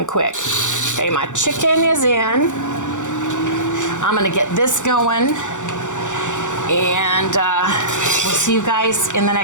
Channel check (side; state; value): right; late; 0.85 ms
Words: quick. Okay, my chicken is in. I'm gonna get this going, and we'll see you guys in the